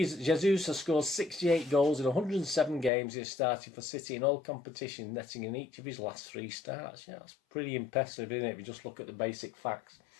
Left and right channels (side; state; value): right; drops out; at 2.9 s